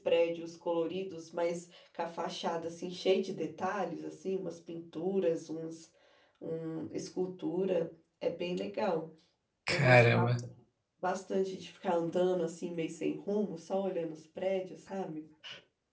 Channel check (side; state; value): both; identical; correlation 1.00